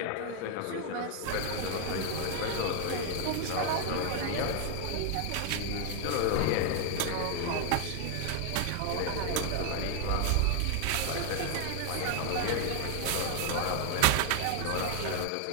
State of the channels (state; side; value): different; both; correlation 0.00